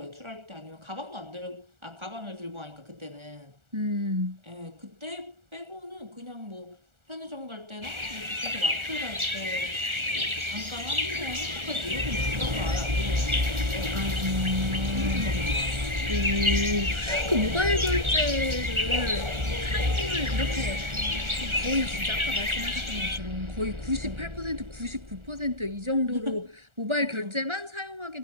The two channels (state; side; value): late; left; 1.4 ms